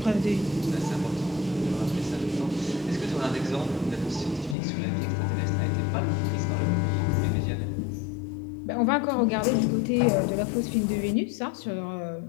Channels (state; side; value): drops out; right; at 4.5 s